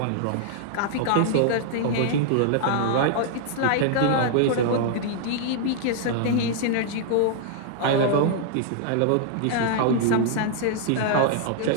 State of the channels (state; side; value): different; both; correlation 0.00